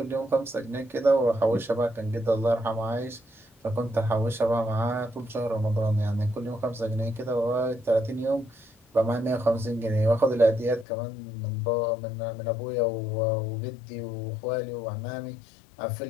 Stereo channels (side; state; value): right; drops out; at 10.9 s